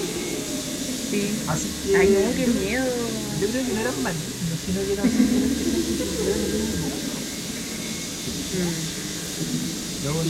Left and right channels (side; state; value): both; identical; correlation 1.00